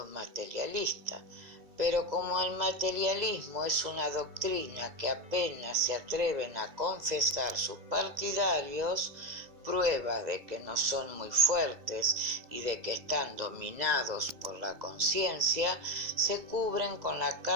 materialistas, pero como el materialismo es una doctrina que apenas se atreven a confesar sus partidarios, prueba de que no son muy fuertes y de que están dominados por la conciencia, se cubren con la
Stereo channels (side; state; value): left; late; 2.0 ms